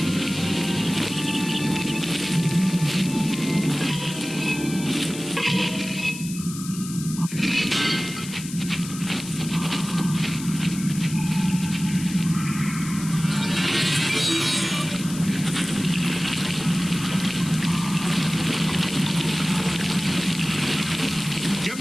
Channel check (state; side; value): noise; left; hiss, 11 dB below the sound